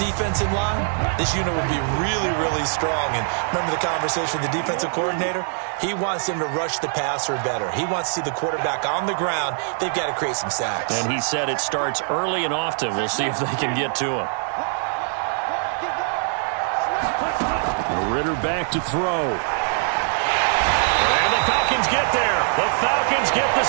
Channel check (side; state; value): left; silent; 55 dB below the other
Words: in line, this unit would be really, really strong. And remember the conversation with the defensive coordinator? He wants them to rush the passer better. He wants to see the quarterback on the ground. They've got to create some sacks. And he said it starts early and often. We'll see if they can get to him. Ritter back to throw. And the Falcons get there. The Falcons get the